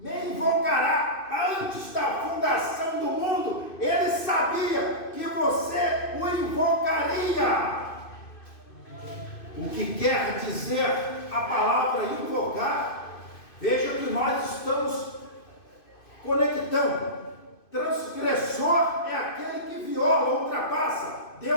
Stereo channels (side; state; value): right; late; 2.5 ms